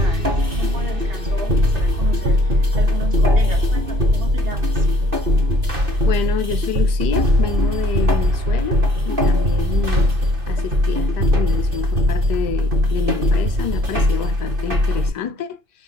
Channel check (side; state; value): left; late; 2.6 ms